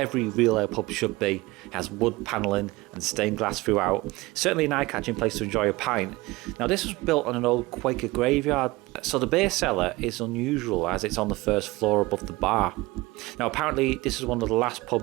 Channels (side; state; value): left; quieter; 21.3 dB